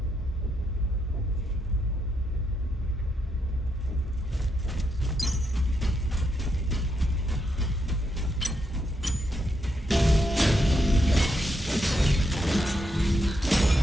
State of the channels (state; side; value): normal; both; correlation 0.80